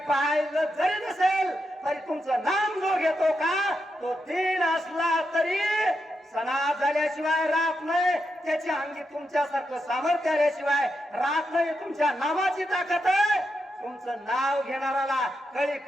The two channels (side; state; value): both; normal; correlation 0.85